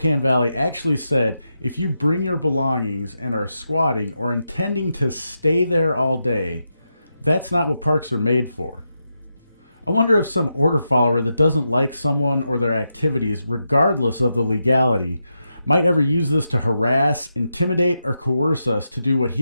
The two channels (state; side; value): inverted; both; correlation -0.86